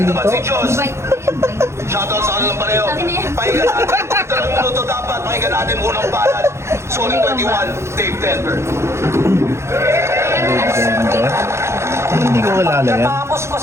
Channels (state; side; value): late; left; 0.13 ms